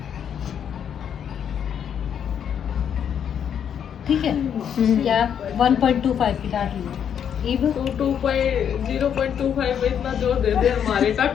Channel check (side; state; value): right; quieter; 8.5 dB